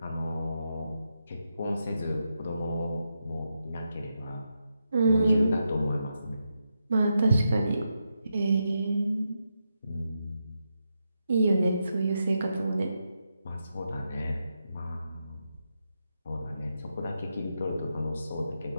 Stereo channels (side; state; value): both; inverted; correlation -0.85